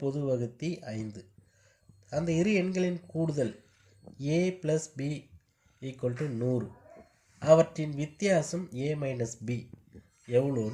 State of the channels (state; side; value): identical; both; correlation 1.00